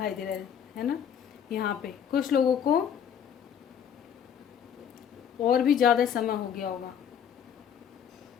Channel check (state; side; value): quieter; right; 8.4 dB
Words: दे रहा है ना यहाँ पे। कुछ लोगों को और भी ज़्यादा समय हो गया होगा,